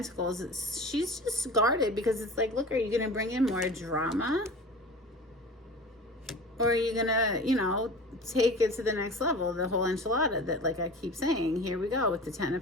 She's just guarded because it's like, look, are you going to bring in more drama? Or are you going to, you know, take it to the next level? The whole enchilada that, like I keep saying, here we go with the 10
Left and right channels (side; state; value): both; normal; correlation 0.37